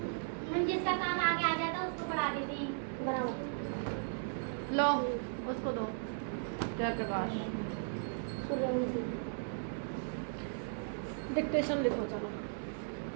जिसका काम आगे आ जाता उसको पढ़ा देती बराबर। लो उसको दो जयप्रकाश। डिक्टेशन लिखो चलो।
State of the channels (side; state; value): left; silent; 53 dB below the other